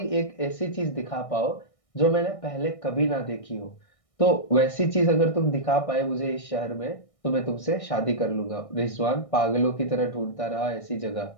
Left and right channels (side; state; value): right; late; 1.6 ms